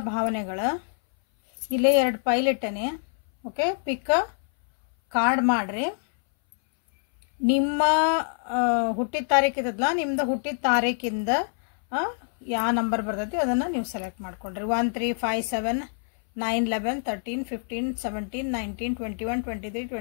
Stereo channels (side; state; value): right; silent; 60 dB below the other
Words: ಭಾವನೆಗಳು ಇಲ್ಲೇ ಎರಡು ಫೈಲ್ ಇಟ್ಟನೆ ಓಕೆ ಪಿಕ್ ಕಾರ್ಡ್ ಮಾಡ್ರಿ ನಿಮ್ಮ ಹುಟ್ಟಿದ ತಾರೀಕು ಇದ್ದಲ್ಲ ನಿಮ್ಮದು ಹುಟ್ಟಿದ ತಾರೀಕಿಂದ ಯಾವ ನಂಬರ್ ಬರ್ತೈತಿ ಅದನ್ನ ನೀವು ಸೆಲೆಕ್ಟ್ ಮಾಡ್ಕೊಂಡ್ರಿ 1 3 5 7 9 11 13 15 17 19 21 23